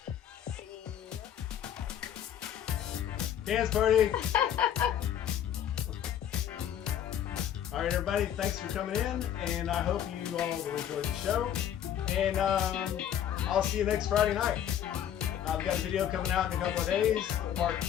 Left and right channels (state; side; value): quieter; right; 10.0 dB